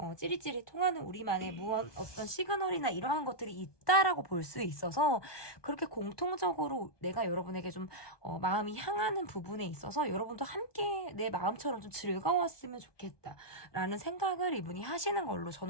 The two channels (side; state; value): right; late; 1.2 ms